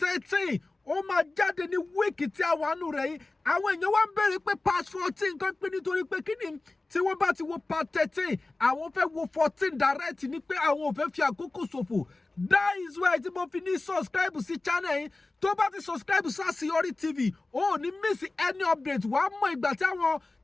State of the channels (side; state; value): right; quieter; 3.2 dB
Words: ó máa jáde ní wíìkì tí a wà nù rẹ̀ yìí àwọn èèyàn wá ń béèrè pé part 14 kan pé nítorí pé kí ni tí wọ́n bá ti wo part 13 àwọn fẹ́ wo 14 direct ní pé àwọn ò fẹ́ fi àkókò ṣòfò that is why tí mo fi ní subscribe sí channel yìí tó bá ti subscribe sí Àṣeyọrí TV ó ní miss any update wàá mọ ìgbà tí àwọn